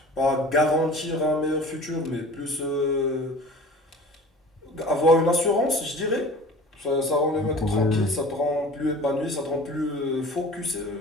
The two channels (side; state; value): both; normal; correlation 0.41